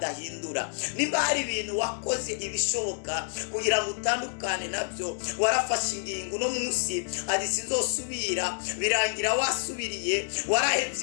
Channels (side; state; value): right; silent; digital silence